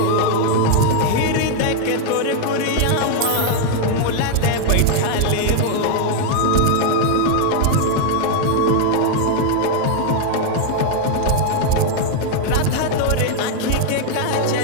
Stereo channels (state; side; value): different; both; correlation 0.00